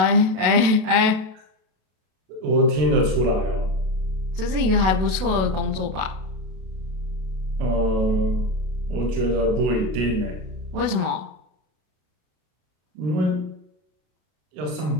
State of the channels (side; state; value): left; late; 32 ms